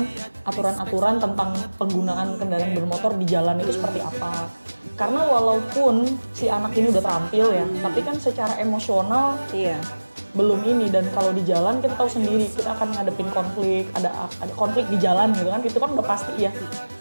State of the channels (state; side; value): inverted; both; correlation -1.00